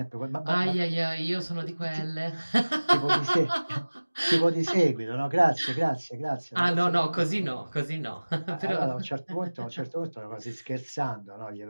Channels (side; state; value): both; inverted; correlation -1.00